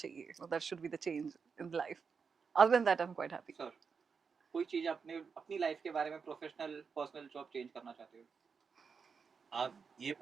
That should be the change in life. Other than that, I'm quite happy. Sir, कोई चीज अपनी लाइफ के बारे में प्रोफेशनल पर्सनल जॉब चेंज करना चाहते हो? आप ये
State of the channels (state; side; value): quieter; left; 5.7 dB